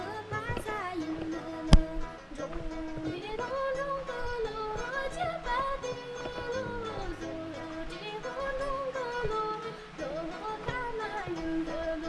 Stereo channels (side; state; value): both; identical; correlation 1.00